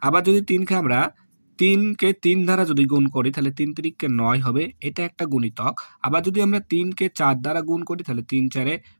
আবার যদি ৩কে ৩ দ্বারা যদি গুণ করি তাহলে ৩ তিরিককে ৯ হবে, এটা একটা গুণিতক। আবার যদি আমরা ৩কে ৪ দ্বারা গুণ করি তাহলে ৩ ৪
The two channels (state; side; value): inverted; both; correlation -1.00